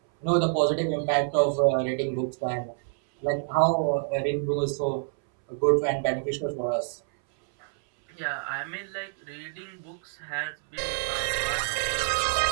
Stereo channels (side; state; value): left; silent; 60 dB below the other